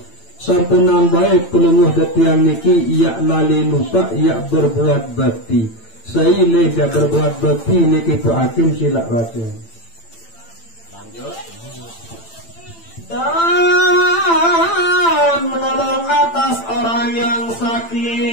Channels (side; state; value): right; late; 8.9 ms